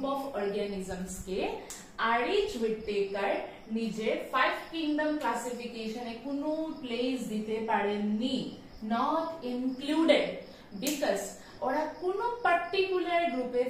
of organisms K RH whittaker নিজের 5 কিংডম ক্লাসিফিকেশনে কোনো প্লেস দিতে পারেননি, নট ইনক্লুডেড, বিকজ ওরা কোনো পার্টিকুলার গ্রুপে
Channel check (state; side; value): identical; both; correlation 1.00